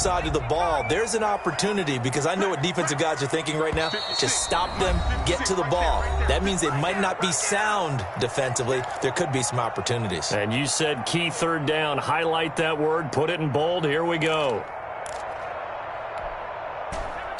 of the ball, there's an opportunity, because I know what defensive guys are thinking right now. Just stop them, get to the ball. That means they might not be sound defensively. There could be some opportunities. And you said key third down. Highlight that word, put it in bold. Here we go.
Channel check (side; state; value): both; identical; correlation 1.00